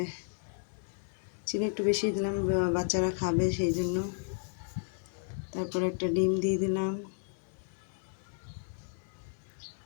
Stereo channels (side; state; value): right; silent; 56 dB below the other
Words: চিনি একটু বেশি দিলাম, বাচ্চারা খাবে সেই জন্য। তারপরে একটা ডিম দিয়ে দিলাম,